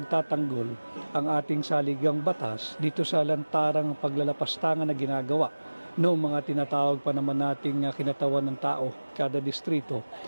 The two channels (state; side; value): inverted; both; correlation -1.00